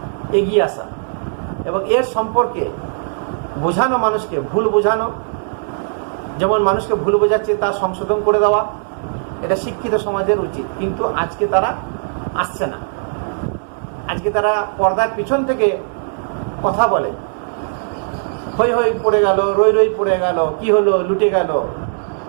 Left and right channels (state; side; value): silent; left; 62 dB below the other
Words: এগিয়ে আসা এবং এর সম্পর্কে বোঝানো, মানুষকে ভুল বোঝানো। যেমন মানুষকে ভুল বোঝাচ্ছে তা সংশোধন করে দেওয়া, এটা শিক্ষিত সমাজের উচিত। কিন্তু আজকে তারা আসছে না। আজকে তারা পর্দার পিছন থেকে কথা বলে, হই হই পড়ে গেল, রই রই পড়ে গেল, কি হলো, লুটে গেল,